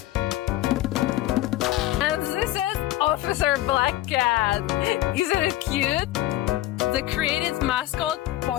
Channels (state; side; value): quieter; right; 15.6 dB